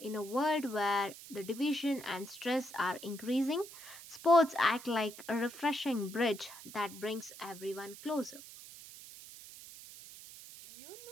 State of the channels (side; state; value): right; noise; hiss, 15 dB below the sound